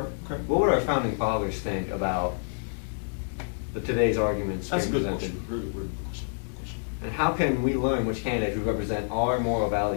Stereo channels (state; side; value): silent; right; digital silence